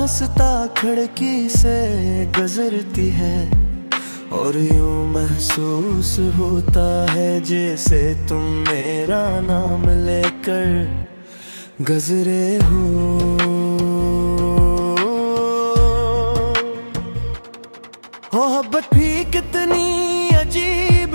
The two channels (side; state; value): both; inverted; correlation -1.00